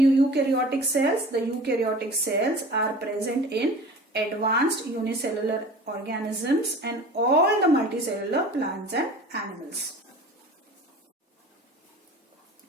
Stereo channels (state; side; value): normal; both; correlation 0.41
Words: cells? The eukaryotic cells are present in advanced unicellular organisms and all the multicellular plants and animals.